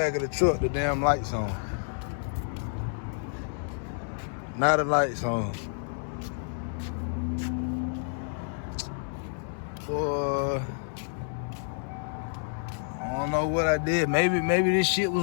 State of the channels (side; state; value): right; silent; 58 dB below the other